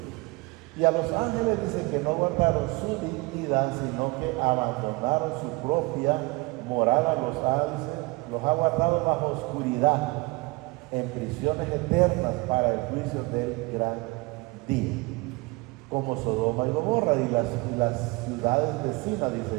Y a los ángeles dice que no guardaron su dignidad, sino que abandonaron su propia morada. Los ha guardado bajo oscuridad, en prisiones eternas para el juicio del gran día, como Sodoma y Gomorra y las ciudades vecinas,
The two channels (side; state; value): left; quieter; 25.3 dB